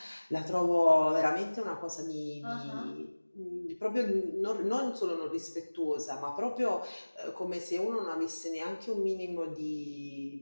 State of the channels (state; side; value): inverted; both; correlation -1.00